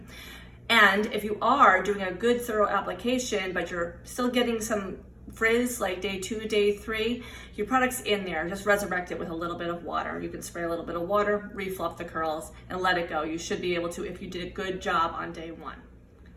And if you are doing a good thorough application, but you're still getting some frizz like day two, day three, your product's in there. Just resurrect it with a little bit of water. You can spray a little bit of water, refluff the curls, and let it go. You should be able to if you did a good job on day one.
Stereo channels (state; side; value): identical; both; correlation 1.00